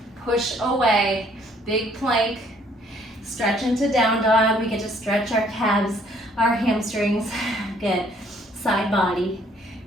Push away. Big plank. Stretch into down dog. We get to stretch our calves, our hamstrings. Good. Side body.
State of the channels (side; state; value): both; normal; correlation 0.62